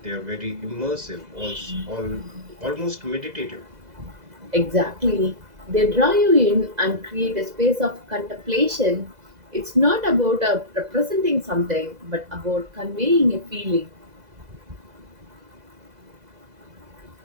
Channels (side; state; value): left; late; 2.0 ms